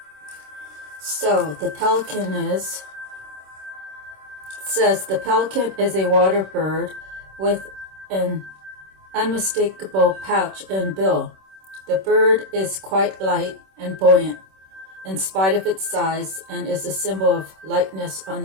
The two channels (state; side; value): late; left; 26 ms